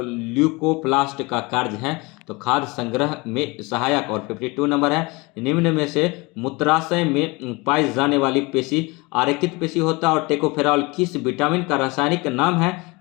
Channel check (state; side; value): quieter; right; 25.3 dB